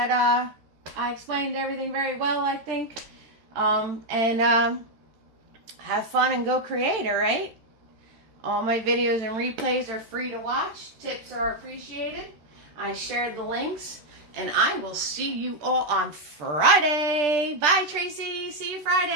I explained everything very well, I think. Have fun and go create, all right? All my videos and replays are free to watch. Tips are appreciated. I shared the links. And I will see you all on Friday. Bye, Tracy. See you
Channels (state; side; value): late; left; 13 ms